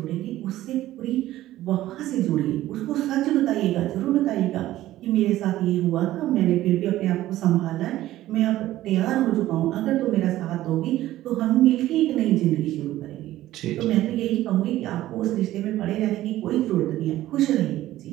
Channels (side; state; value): left; quieter; 14.8 dB